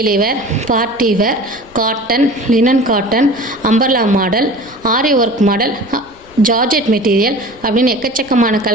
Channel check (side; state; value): left; noise; rumble, 26 dB below the sound